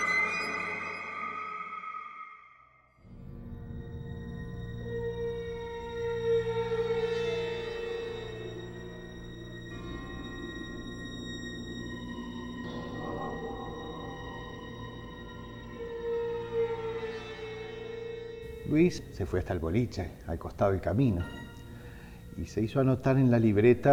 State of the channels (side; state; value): both; identical; correlation 1.00